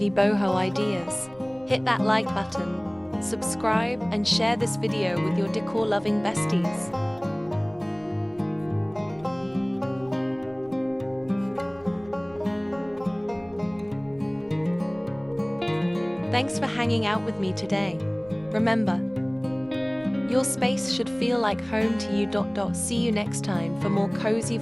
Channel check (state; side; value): noise; left; hum, 27 dB below the sound